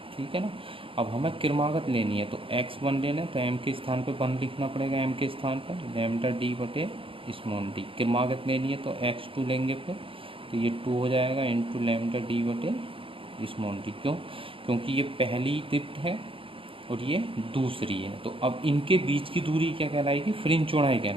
ठीक है ना। अब हमें क्रमागत लेनी है तो x1 लेना है तो m के स्थान पर 1 लिखना पड़ेगा, m के स्थान पर लैम्डा d बटे स्मॉल d। क्रमागत लेनी है तो x2 लेंगे फिर, तो ये 2 हो जाएगा इंटू लैम्डा d बटे स्मॉल d। क्यों, क्योंकि ये पहली दीप्त है और ये दूसरी है। तो अब इनके बीच की दूरी क्या कहलाएगी, फ्रिंज चौड़ाई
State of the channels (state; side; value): late; left; 0.26 ms